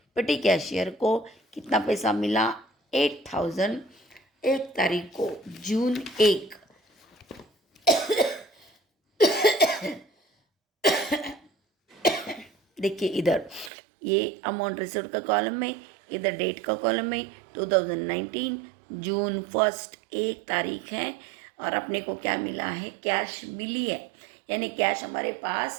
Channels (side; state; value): left; drops out; at 13.7 s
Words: पेटी कैशियर को कितना पैसा मिला? 8,000 1 तारीख को, जून 1। देखिए इधर ये अमाउंट रिसीव्ड का कॉलम में, इधर डेट का कॉलम में 2019 जून 1 1 तारीख है। और अपने को क्या मिला है? कैश मिली है, यानी कैश हमारे